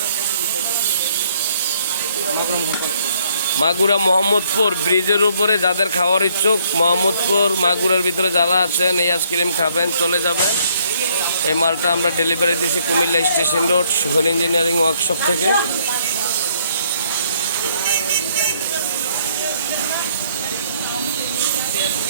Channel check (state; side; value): inverted; both; correlation -0.66